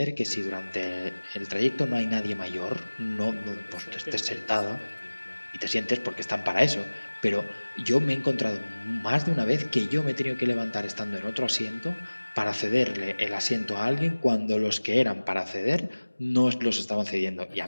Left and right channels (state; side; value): inverted; both; correlation -1.00